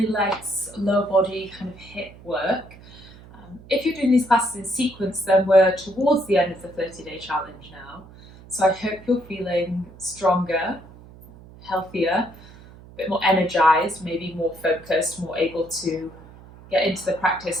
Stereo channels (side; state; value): right; noise; hum, 20 dB below the sound